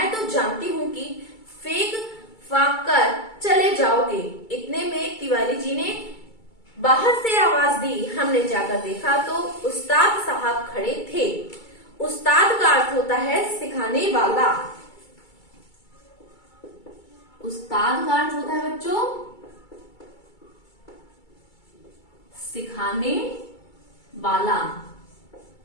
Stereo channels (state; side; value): late; right; 2.3 ms